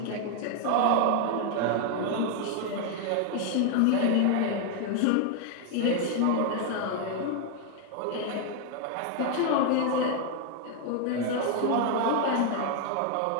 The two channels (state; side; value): different; both; correlation 0.00